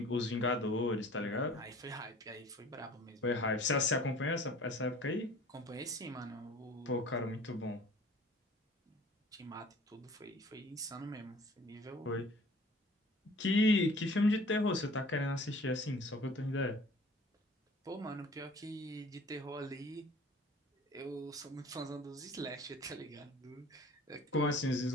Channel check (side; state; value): both; normal; correlation 0.48